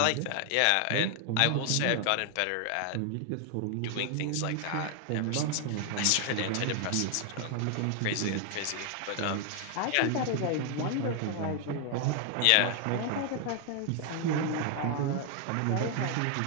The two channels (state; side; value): different; both; correlation 0.00